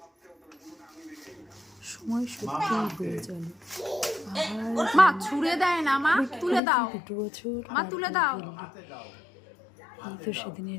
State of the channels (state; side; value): drops out; right; at 6.6 s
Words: সময় সত্যি হয়ে গেল। মা ছুঁড়ে দেয় না, মা তুলে দাও, মা তুলে দাও। এই তো